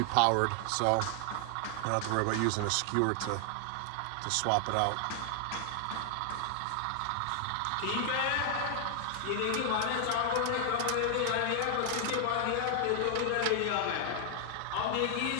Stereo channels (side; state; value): both; different; correlation 0.00